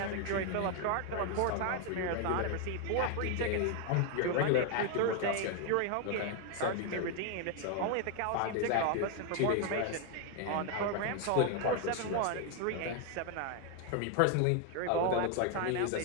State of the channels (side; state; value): both; different; correlation 0.01